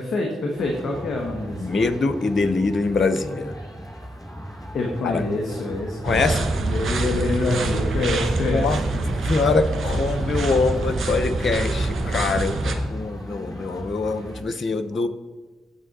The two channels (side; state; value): both; normal; correlation 0.79